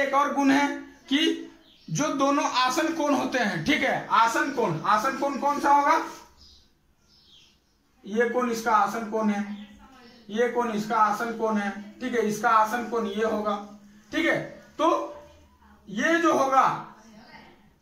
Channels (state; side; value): identical; both; correlation 1.00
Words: और गुण है कि जो दोनों आसन कोण होते हैं, ठीक है, आसन कोण कौन सा होगा? ये कोण इसका आसन कोण है, ये कोण इसका आसन कोण है, ठीक है, इसका आसन कोण ये होगा, ठीक है। तो ये जो होगा,